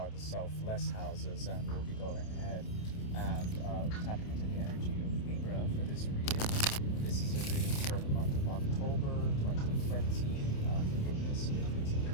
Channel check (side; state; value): right; late; 28 ms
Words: the selfless houses, and we'll be going ahead and tapping into the energy of Libra for this reading. This is a reading for the month of October 2020. Forgiveness if it's a